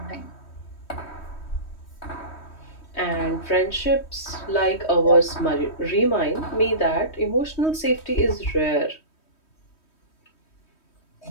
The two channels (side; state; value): right; late; 3.1 ms